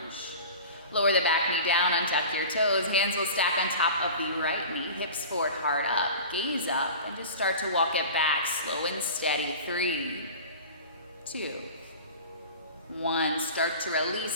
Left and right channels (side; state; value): both; inverted; correlation -0.36